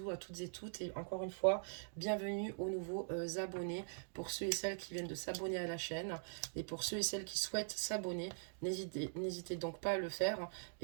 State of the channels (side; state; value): left; silent; digital silence